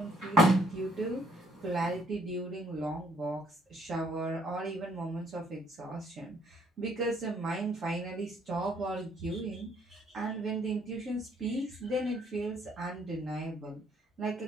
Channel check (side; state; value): both; normal; correlation 0.66